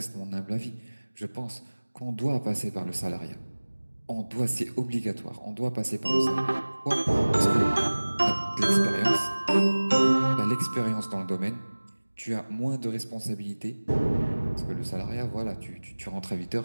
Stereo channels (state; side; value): inverted; both; correlation -1.00